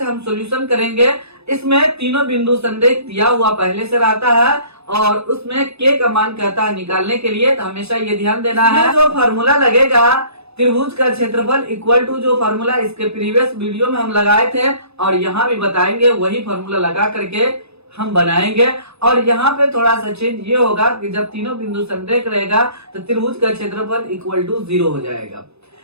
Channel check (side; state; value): left; late; 0.79 ms